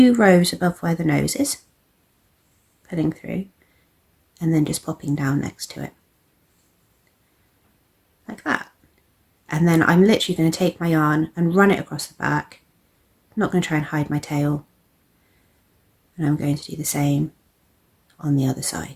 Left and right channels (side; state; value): both; identical; correlation 1.00